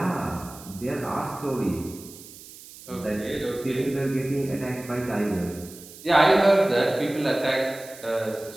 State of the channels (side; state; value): right; noise; hiss, 18 dB below the sound